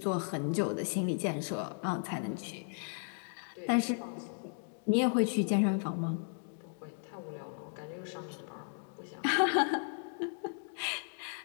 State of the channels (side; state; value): right; silent; 54 dB below the other